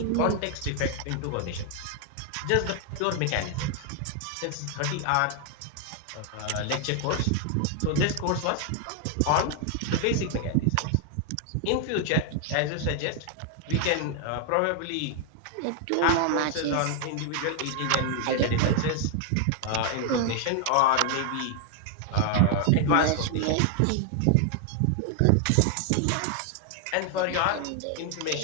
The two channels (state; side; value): different; both; correlation 0.00